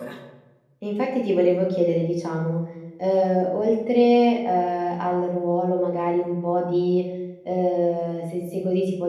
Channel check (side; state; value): both; identical; correlation 1.00